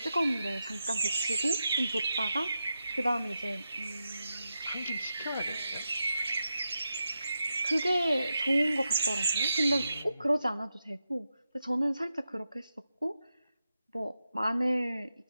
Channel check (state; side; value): inverted; both; correlation -0.88